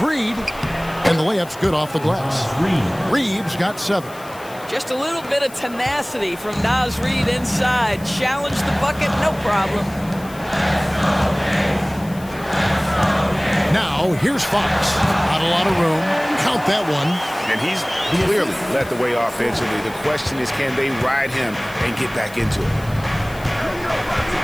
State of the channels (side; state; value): left; noise; hiss, 20 dB below the sound